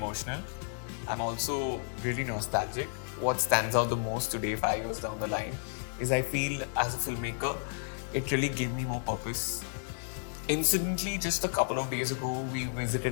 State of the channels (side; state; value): right; silent; 56 dB below the other